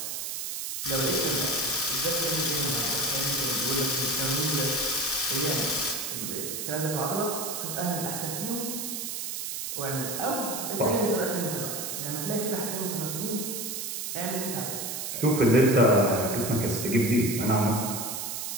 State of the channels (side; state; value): right; noise; hiss, 4 dB below the sound